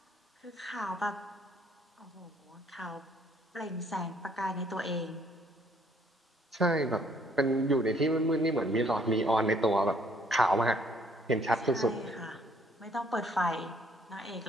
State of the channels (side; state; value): both; normal; correlation 0.63